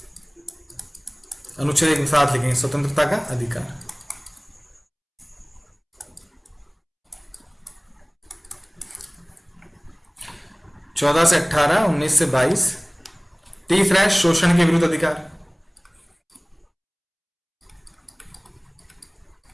अनुच्छेद एक साथ लिखेंगे, स्वतंत्रता का अधिकार। चौदह से 18, 19 से 22। तीसरा है शोषण के विरुद्ध अधिकार।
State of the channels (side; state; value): both; identical; correlation 1.00